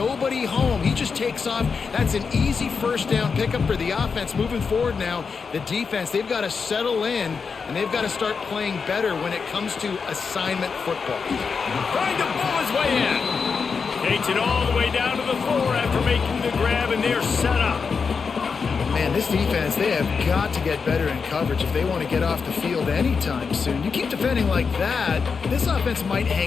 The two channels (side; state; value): right; quieter; 5.4 dB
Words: home. He just takes off. That's an easy first down pickup for the offense. Moving forward now, the defense, they've got to settle in, and they've got to start playing better when it comes to assignment football. Trying to pull his way in. Takes it all the way down to the 4 after making the grab, and they're set up. Man, this defense, they have got to get better in coverage if they want to get off the field anytime soon. You keep defending like that, this offense might